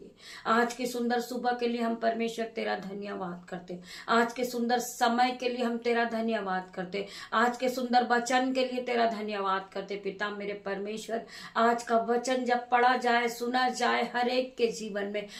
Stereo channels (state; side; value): identical; both; correlation 1.00